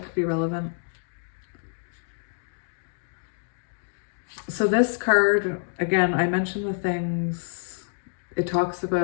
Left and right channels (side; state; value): right; silent; digital silence